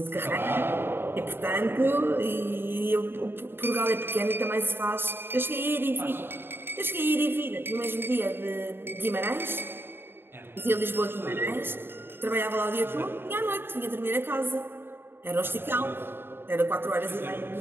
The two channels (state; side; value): late; left; 0.11 ms